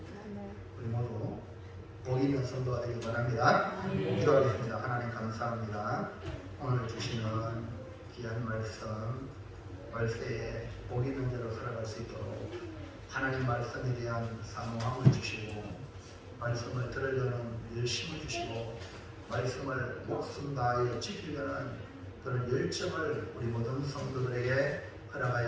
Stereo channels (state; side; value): identical; both; correlation 1.00